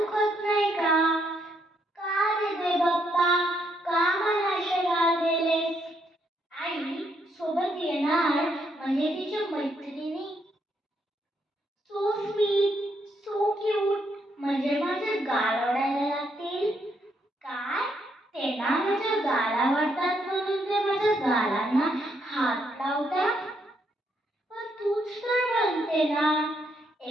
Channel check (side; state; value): both; normal; correlation 0.75